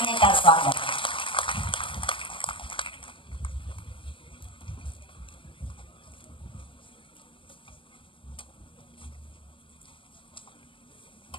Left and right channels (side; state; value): right; late; 0.25 ms